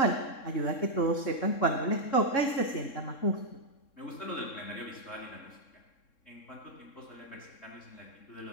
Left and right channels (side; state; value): right; late; 3.7 ms